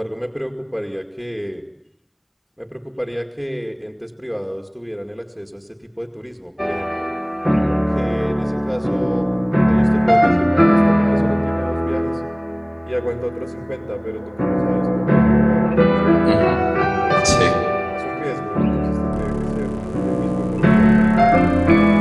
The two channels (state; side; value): identical; both; correlation 1.00